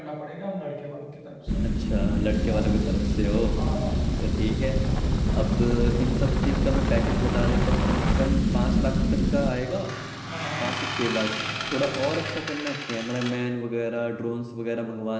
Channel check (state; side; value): identical; both; correlation 1.00